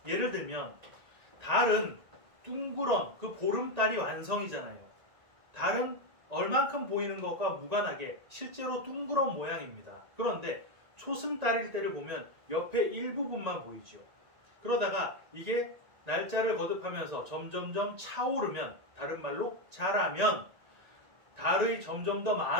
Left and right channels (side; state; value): left; late; 1.9 ms